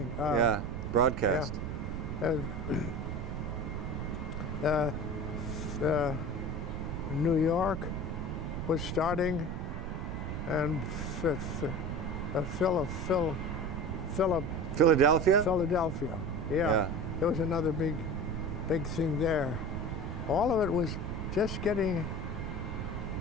Broadcast. New York was starting, and Philadelphia. Yeah. There was another big thing there. All of it was just getting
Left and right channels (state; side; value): noise; right; rumble, 4 dB below the sound